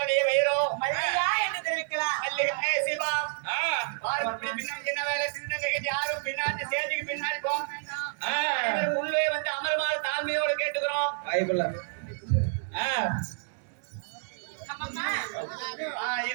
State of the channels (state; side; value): silent; left; digital silence